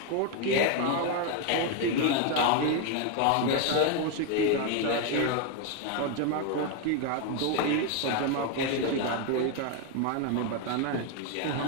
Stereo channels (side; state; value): both; different; correlation 0.01